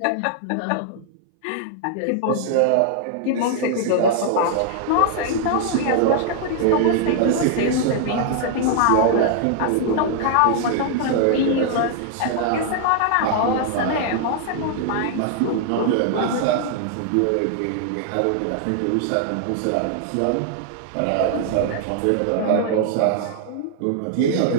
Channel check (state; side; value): different; both; correlation 0.00